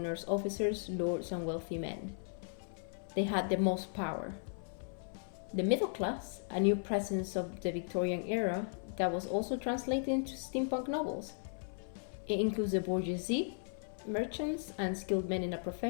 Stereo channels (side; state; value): right; silent; 53 dB below the other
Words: officers, lords, and wealthy men. They had the most power. The middle class, a new presence of the Victorian era, that was also translated into steampunk novels. It includes the bourgeoisie, merchants, and skilled men in a